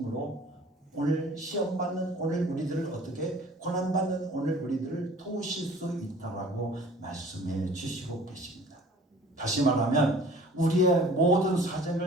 오늘 시험 받는 오늘 우리들을 어떻게 고난 받는 오늘 우리들을 도우실 수 있다라고 말씀해 주시고 계십니다. 다시 말하면 우리의 모든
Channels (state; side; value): normal; both; correlation 0.48